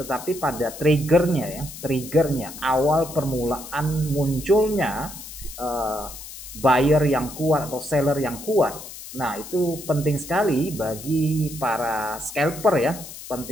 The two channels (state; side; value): noise; left; hiss, 13 dB below the sound